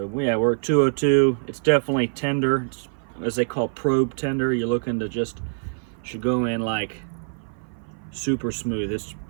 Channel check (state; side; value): silent; left; 56 dB below the other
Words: yeah, we're at 202. It's definitely tender. It's, as they call, probe tender. You're looking to just, should go in like super smooth. It's